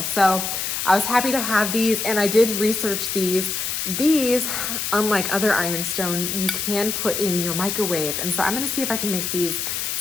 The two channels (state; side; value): noise; left; hiss, 2 dB below the sound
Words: So I was happy to have these, and I did research these. These, unlike other ironstone, you can put in your microwave. And so I'm gonna see if I can make these